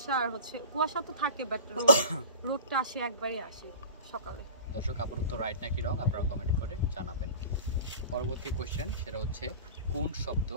আর হচ্ছে কুয়াশা তো থাকে, বাট রোদটা আসে একবারই আসে সকালে। দর্শক আপুর উত্তর রাইট নাকি রং আপনারা কমেন্ট করে জানাবেন। পরবর্তী কোশ্চেন সেটা হচ্ছে কোন শব্দ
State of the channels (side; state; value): both; inverted; correlation -0.36